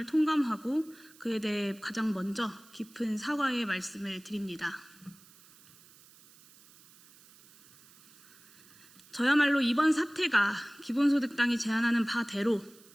통감하고 그에 대해 가장 먼저 깊은 사과의 말씀을 드립니다. 저야말로 이번 사태가 기본소득당이 제안하는 바대로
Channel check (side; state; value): right; noise; hiss, 25 dB below the sound